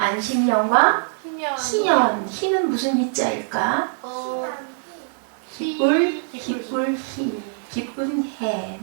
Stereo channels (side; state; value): left; silent; 63 dB below the other